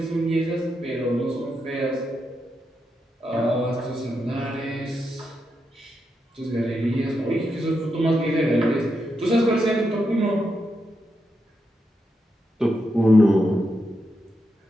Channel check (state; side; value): normal; both; correlation 0.84